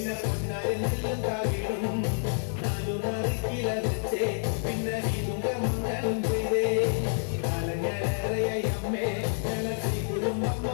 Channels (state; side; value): silent; right; 57 dB below the other